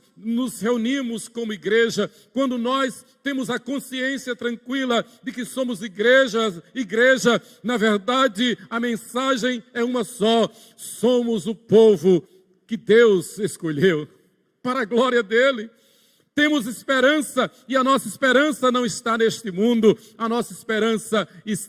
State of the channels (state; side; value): identical; both; correlation 1.00